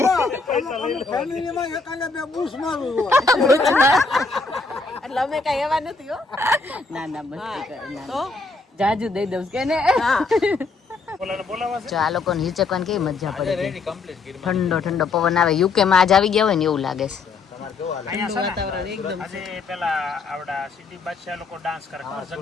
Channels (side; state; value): right; quieter; 4.1 dB